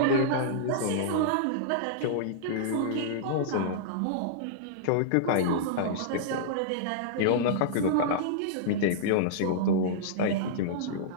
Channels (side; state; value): both; different; correlation -0.02